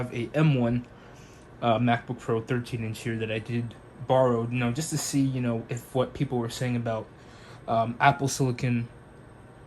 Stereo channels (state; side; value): identical; both; correlation 1.00